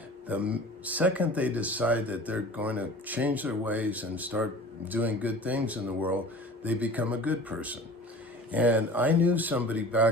the second they decide that they're going to change their ways and start doing good things in the world, they become a good person. And I knew somebody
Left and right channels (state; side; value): normal; both; correlation 0.41